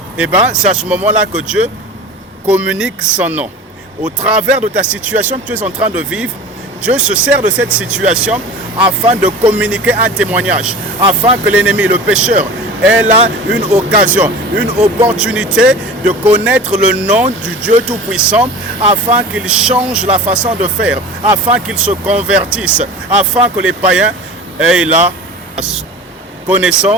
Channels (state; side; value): normal; both; correlation 0.36